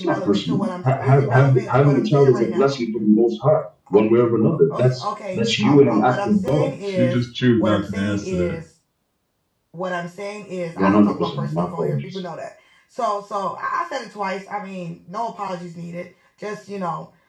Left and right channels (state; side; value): identical; both; correlation 1.00